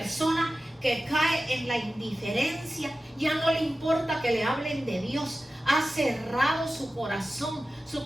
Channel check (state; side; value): normal; both; correlation 0.94